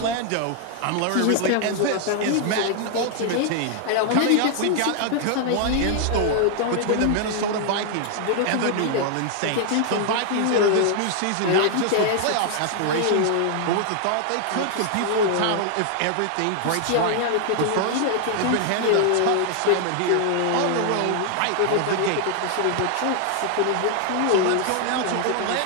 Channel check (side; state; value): both; different; correlation 0.00